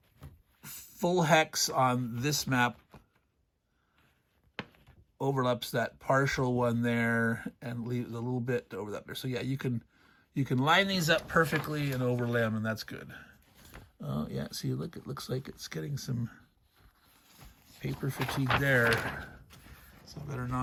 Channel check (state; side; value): identical; both; correlation 1.00